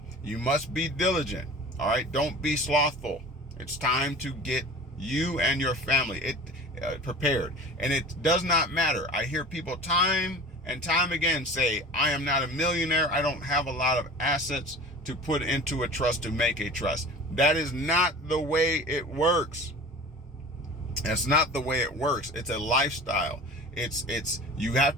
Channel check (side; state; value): both; normal; correlation 0.39